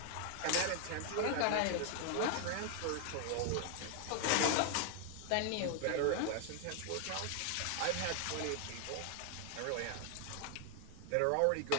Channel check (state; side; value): different; both; correlation 0.00